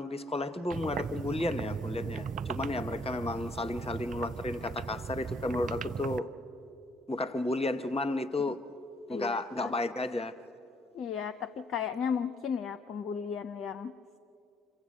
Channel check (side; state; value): both; normal; correlation 0.68